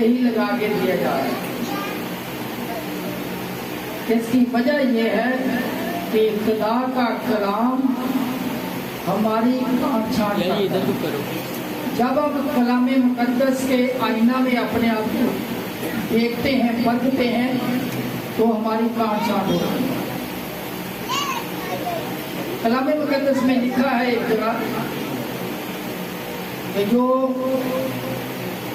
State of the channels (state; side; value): identical; both; correlation 1.00